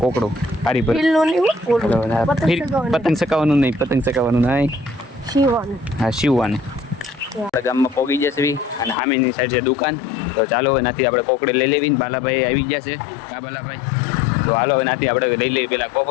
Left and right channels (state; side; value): drops out; right; at 9.0 s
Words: કોકડું હારી પર પતંગ ચકાવવાનું નહીં. હા શિવવાનું. આપણે ગામમાં પોગી જશે. અને સામેની સાઈડ છે દુકાન. તો ચાલો એનાથી આપણે કોકડી લઈ લેવી. બાલાભાઈ આવી જશે. કા બાલાભાઈ? તો હાલો એનાથી આપણે લઈ લઈએ પેલા